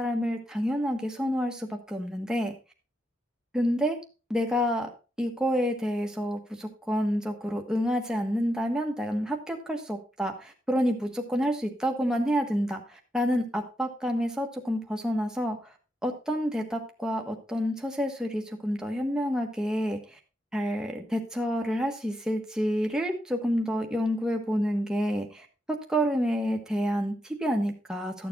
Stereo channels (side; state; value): both; normal; correlation 0.84